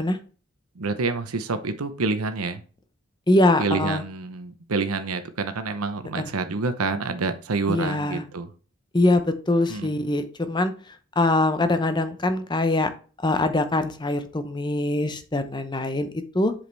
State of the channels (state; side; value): normal; both; correlation 0.55